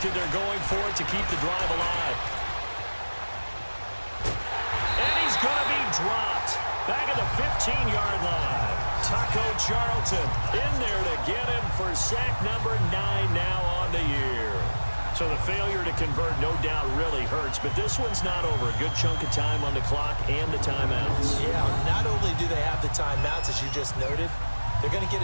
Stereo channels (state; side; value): inverted; both; correlation -1.00